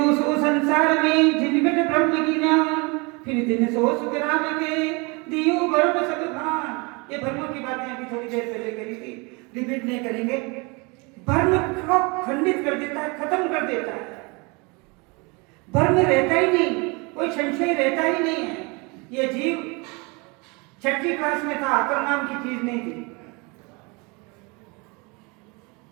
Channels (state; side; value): quieter; left; 28.8 dB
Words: सो संसार में जिनगट ब्रह्म की नाम, फिर दिन सो सुख राम के दियो गर्भ सब भान। ये भ्रमों की बातें अभी थोड़ी देर पहले करी थी, रिपीट नहीं करेंगे। भ्रम को खंडित कर देता है, खत्म कर देता है। भ्रम रहता ही नहीं, कोई संशय रहता ही नहीं है। ये जीव 6ठी क्लास में था, अकल नाम की चीज नहीं थी।